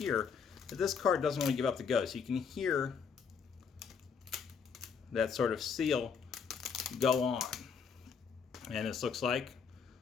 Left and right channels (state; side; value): quieter; right; 6.2 dB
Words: that this card doesn't really give up the ghost. You can hear that sort of seal go on. And this looks like,